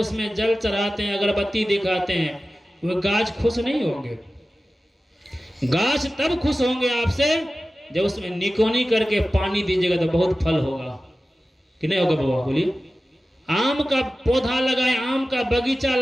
जल चढ़ाते हैं, अगरबत्ती दिखाते हैं, वो गाछ खुश नहीं होंगे। गाछ तब खुश होंगे आपसे जब उसमें निकोनी करके पानी दीजिएगा तो बहुत फल होगा कि नहीं होगा बाबा? बोलिए। आम का पौधा लगाए, आम का बगीचा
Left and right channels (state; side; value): normal; both; correlation 0.95